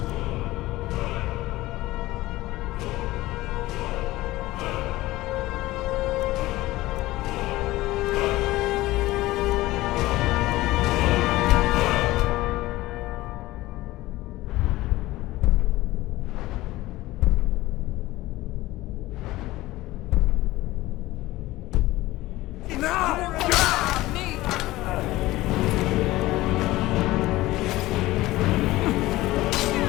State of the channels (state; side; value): quieter; right; 17.8 dB